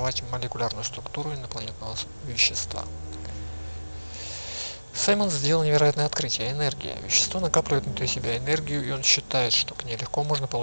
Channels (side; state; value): both; inverted; correlation -1.00